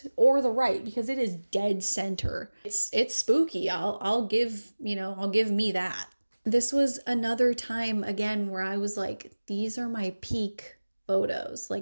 or the right, because it is dead center. It's spooky. I'll give me that. This was another time again where I was like, these are my peak photos.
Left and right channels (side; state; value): both; inverted; correlation -1.00